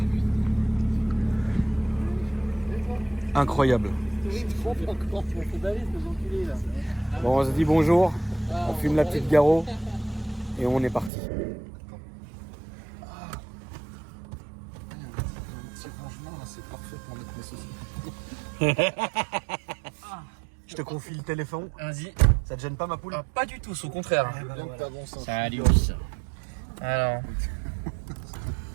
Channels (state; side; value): drops out; left; at 11.1 s